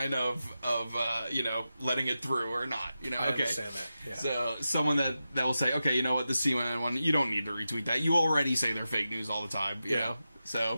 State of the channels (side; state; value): both; inverted; correlation -0.91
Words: of letting it through or not. I understand that. Yeah. So someone that will say, okay, you know what, the CNN one, you don't need to retweet that. You already say they're fake news all the time. You know.